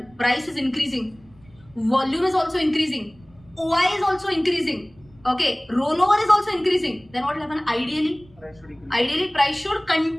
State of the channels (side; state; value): right; noise; rumble, 28 dB below the sound